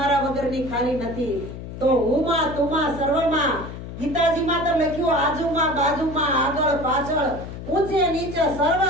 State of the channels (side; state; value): left; noise; hum, 10 dB below the sound